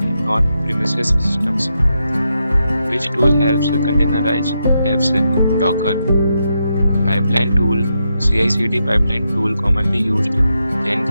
and on-premises systems. Which tool helps containerize apps? Docker. Pipeline tool, CI/CD pipeline tool commonly used,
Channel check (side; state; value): both; inverted; correlation -0.84